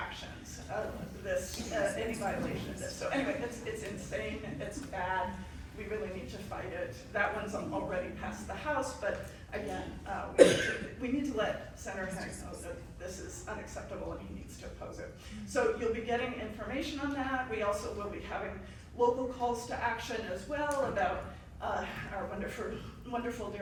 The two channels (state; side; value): identical; both; correlation 1.00